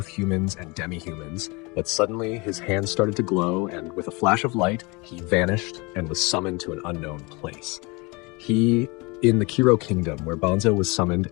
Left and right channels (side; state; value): right; quieter; 27.1 dB